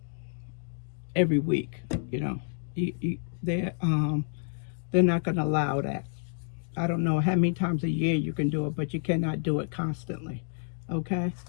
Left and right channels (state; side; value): silent; right; digital silence